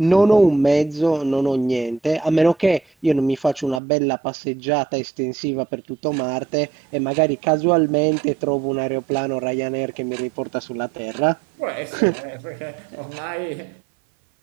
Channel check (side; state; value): left; drops out; at 3.8 s